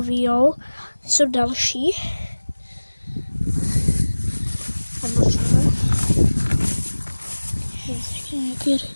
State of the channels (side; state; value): both; inverted; correlation -1.00